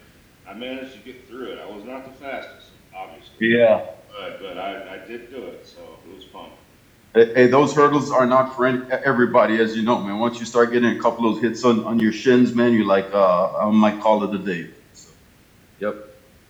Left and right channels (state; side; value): identical; both; correlation 1.00